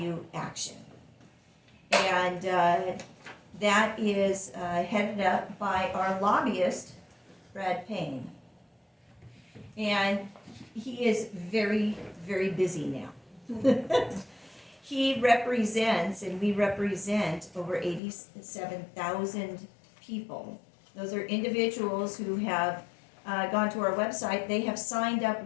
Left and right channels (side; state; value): right; drops out; at 18.0 s